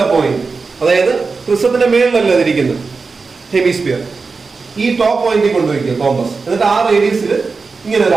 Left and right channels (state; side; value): quieter; left; 4.4 dB